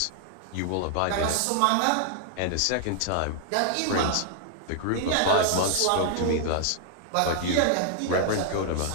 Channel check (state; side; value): different; both; correlation -0.01